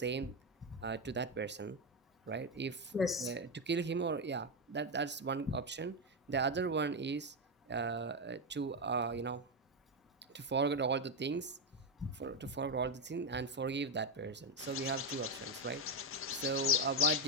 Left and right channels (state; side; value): normal; both; correlation 0.06